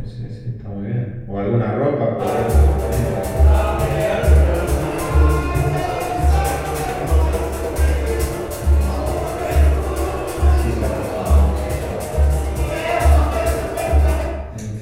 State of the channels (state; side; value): identical; both; correlation 1.00